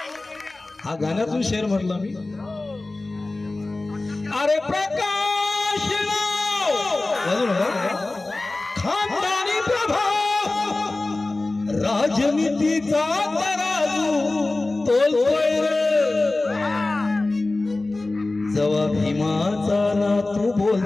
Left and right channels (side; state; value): right; quieter; 3.0 dB